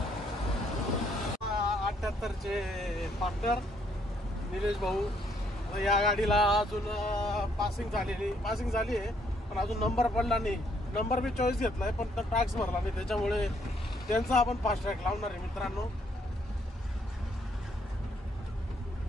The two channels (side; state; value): both; normal; correlation 0.69